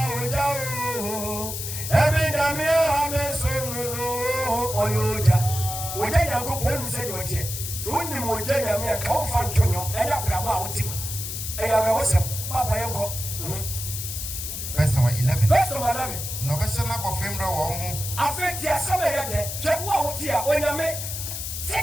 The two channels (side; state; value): left; noise; hiss, 6 dB below the sound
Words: Verse number 11. Verse number 11. No question about Fembra or Affect your summer yet. Check what dear when I may